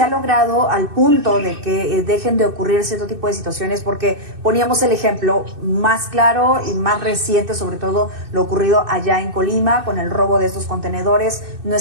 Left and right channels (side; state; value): left; late; 2.6 ms